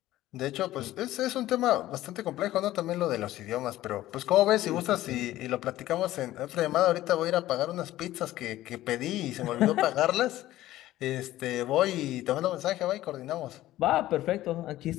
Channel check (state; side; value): quieter; right; 15.1 dB